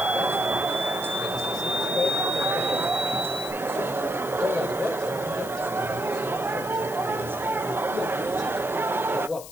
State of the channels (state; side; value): noise; left; hiss, 14 dB below the sound